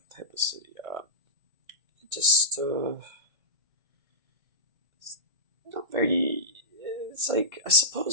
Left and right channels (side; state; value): left; late; 1.6 ms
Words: type of city. Just it's not very. It's like, I